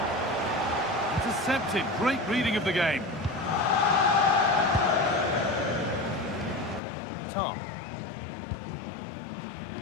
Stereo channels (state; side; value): drops out; right; at 6.8 s